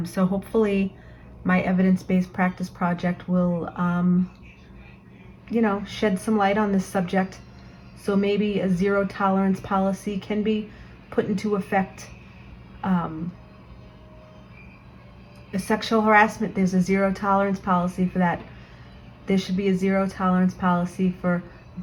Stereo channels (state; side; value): identical; both; correlation 1.00